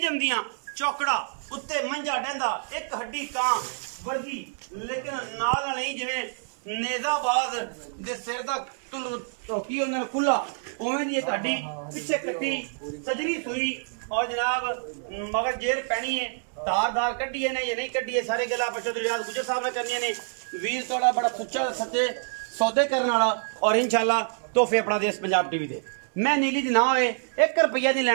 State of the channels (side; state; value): left; silent; digital silence